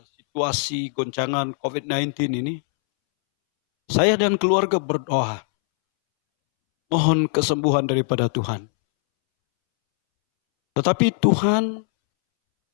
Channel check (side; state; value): right; silent; 65 dB below the other